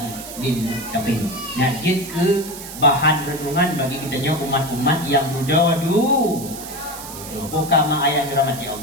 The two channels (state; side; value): noise; right; hiss, 12 dB below the sound